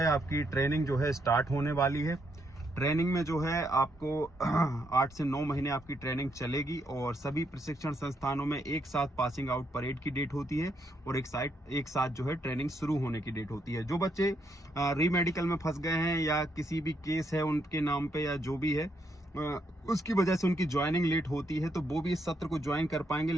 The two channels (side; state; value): both; normal; correlation 0.76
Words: आपकी ट्रेनिंग जो है स्टार्ट होने वाली है। ट्रेनिंग में जो है आपको 8 से 9 महीने आपकी ट्रेनिंग चलेगी, और सभी प्रशिक्षण संस्थानों में एक साथ पासिंग आउट परेड की डेट होती है और एक साथ जो है ट्रेनिंग शुरू होने की डेट होती है। जो बच्चे रीमेडिकल में फंस गए हैं या किसी भी केस है उनके नाम पे या जो भी है, उसकी वजह से उनकी ज्वाइनिंग लेट होती है, तो वो भी इस सत्र को ज्वाइन कर पाएंगे,